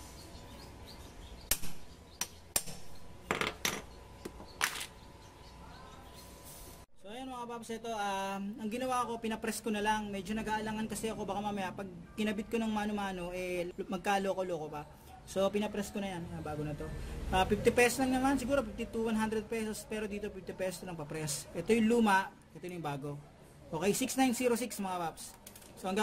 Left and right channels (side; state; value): both; identical; correlation 1.00